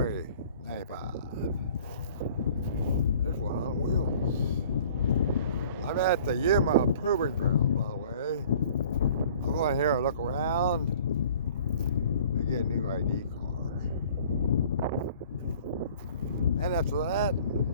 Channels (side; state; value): both; inverted; correlation -0.51